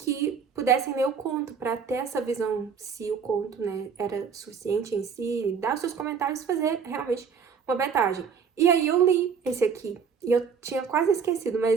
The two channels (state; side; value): quieter; left; 6.3 dB